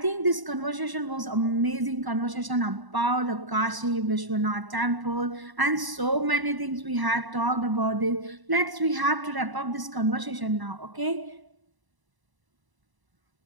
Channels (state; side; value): late; left; 1.0 ms